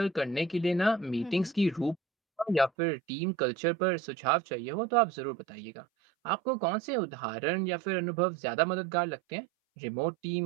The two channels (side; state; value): left; drops out; at 2.7 s